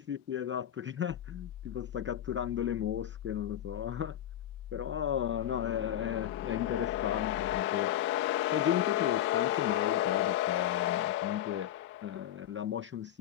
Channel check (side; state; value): right; quieter; 11.4 dB